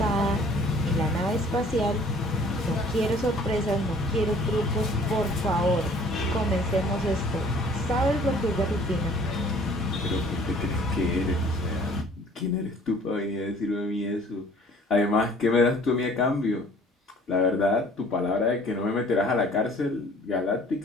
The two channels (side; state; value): both; normal; correlation 0.54